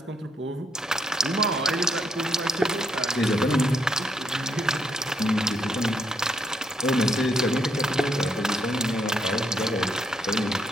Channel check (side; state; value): both; normal; correlation 0.74